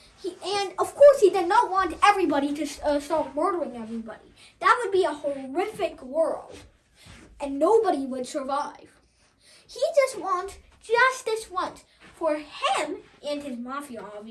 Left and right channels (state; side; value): identical; both; correlation 1.00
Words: And of course, he did not want everybody to start murdering everybody. That would be a horrific world, and nobody would survive. He just wants justice once for him and his mafia,